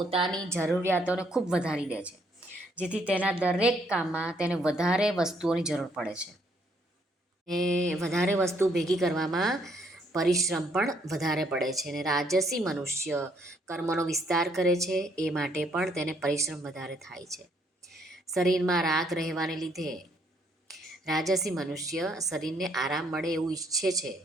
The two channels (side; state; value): both; normal; correlation 0.69